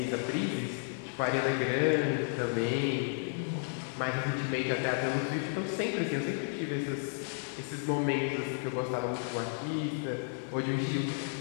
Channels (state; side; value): silent; right; 56 dB below the other